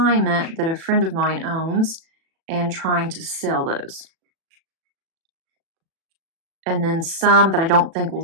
that a friend of mine owns and trying to sell those. And then some that I don't think will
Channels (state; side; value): late; left; 37 ms